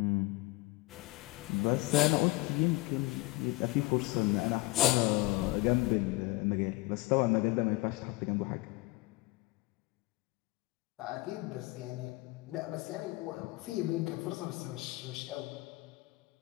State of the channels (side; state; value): right; quieter; 21.2 dB